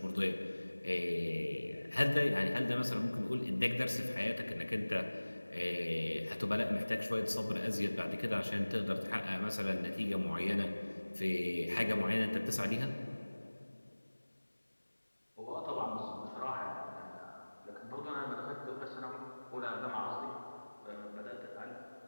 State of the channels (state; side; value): inverted; both; correlation -1.00